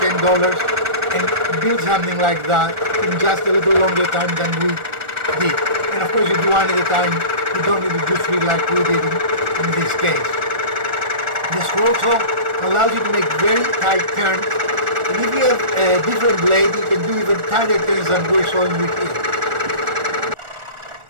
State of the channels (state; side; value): late; left; 1.4 ms